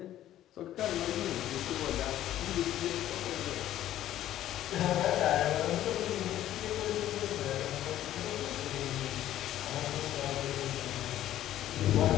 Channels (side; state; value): right; quieter; 12.8 dB